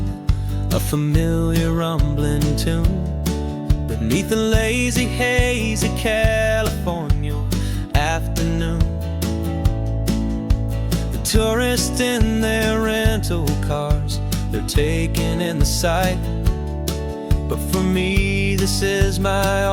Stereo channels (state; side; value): identical; both; correlation 1.00